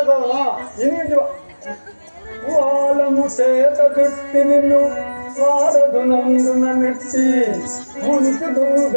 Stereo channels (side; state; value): both; inverted; correlation -1.00